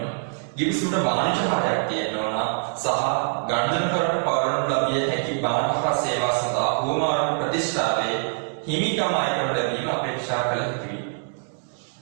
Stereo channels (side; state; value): left; silent; digital silence